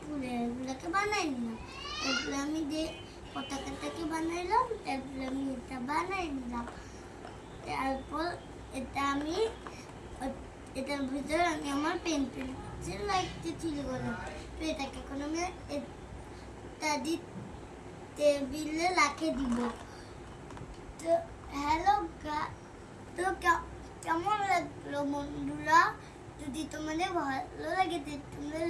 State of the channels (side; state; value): both; identical; correlation 1.00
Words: ফুলগুলোকে বানিয়ে নিলাম। তারপরে আমি যে পতাকাটাকে বানাইলাম, তারপরে আমি এটা বানিয়ে নিলাম। তারপর এটার ভিতরে আমি আমার পেন্সিল লাইটটি ছিল বলে তো এটাকে এখন আমি টেবিলে রাখে দিব। তো হ্যালো তো কেমন লাগলো বন্ধুরা? যদি তোমাদের ভালো লাগে তোমরা